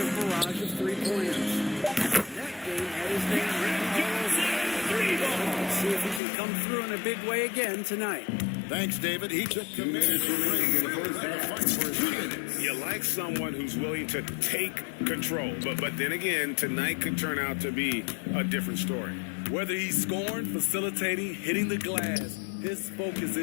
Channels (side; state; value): right; drops out; at 6.2 s